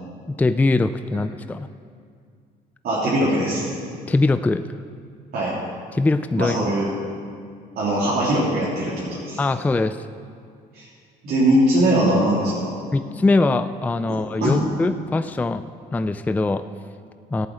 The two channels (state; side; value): normal; both; correlation 0.73